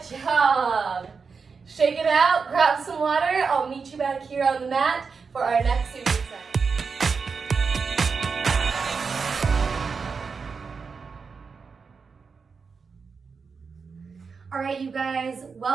job. Shake it out. Grab some water. I'll meet you back here on the mat for our next superset. All right, you guys,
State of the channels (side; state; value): left; quieter; 5.2 dB